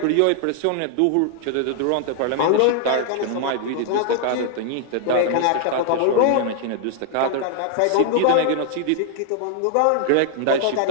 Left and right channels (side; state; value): both; different; correlation 0.00